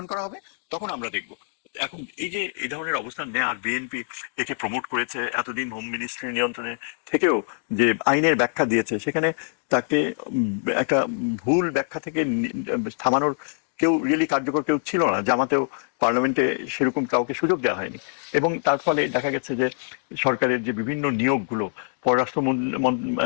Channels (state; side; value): silent; right; digital silence